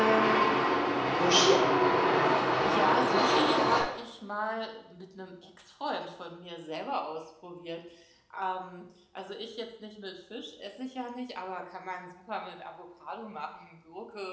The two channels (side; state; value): both; identical; correlation 1.00